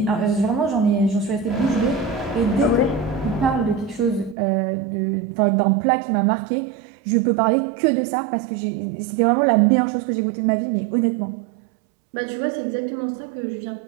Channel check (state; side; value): drops out; left; at 4.4 s